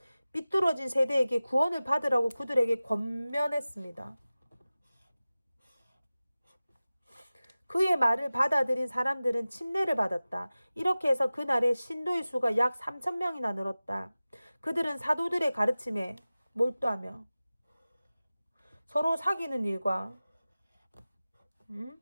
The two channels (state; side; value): inverted; both; correlation -0.96